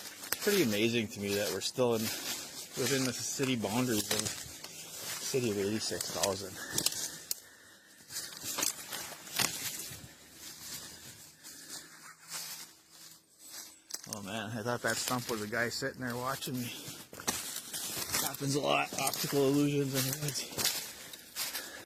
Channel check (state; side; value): identical; both; correlation 1.00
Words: pretty amazing to me that we're still within the city boundaries of the city of 86,000. Oh man, I thought that stump was a guy sitting there watching me. Happens a lot, optical illusions in the woods.